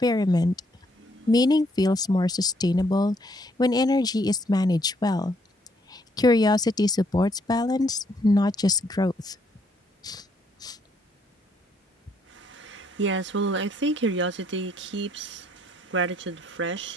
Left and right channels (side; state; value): both; normal; correlation 0.70